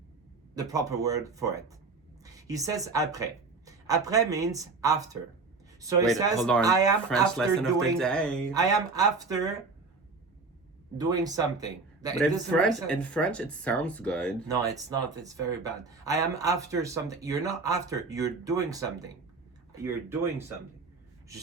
the proper word for it. He says après. Après means after. So he says, hold on. I am French after lesson doing. of the day. I am after doing something. But in French, it sounds good. No, it's not. It's very bad. I am after something. You're not after. You're doing something. You're doing something. Je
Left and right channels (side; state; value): left; quieter; 4.1 dB